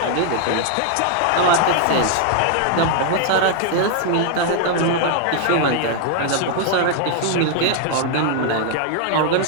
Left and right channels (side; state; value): both; different; correlation 0.00